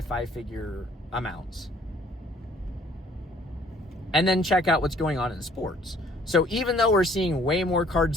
amounts. And then check out what's going on in sports. So even though we're seeing way more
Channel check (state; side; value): normal; both; correlation 0.59